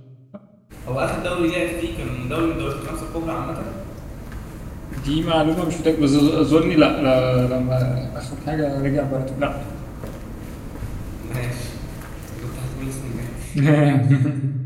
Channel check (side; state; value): both; identical; correlation 1.00